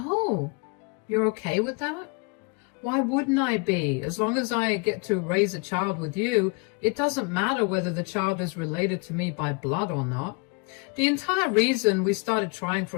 you're okay with that? Why wouldn't I be? As long as I get to raise a child with you, it doesn't matter whether the child is related to me by blood or not. The entire reason we started trying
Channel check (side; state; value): right; quieter; 31.5 dB